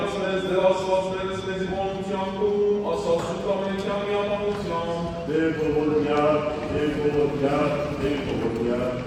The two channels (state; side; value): identical; both; correlation 1.00